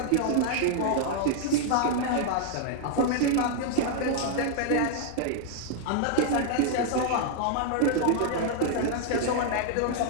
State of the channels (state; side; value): different; both; correlation 0.00